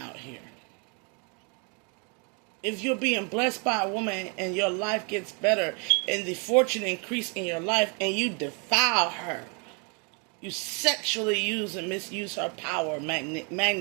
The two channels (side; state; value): left; quieter; 35.6 dB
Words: here. If you're being blessed by a woman and your life gets better and the fortune increase in your life and you defile her, you sexually use and misuse her power,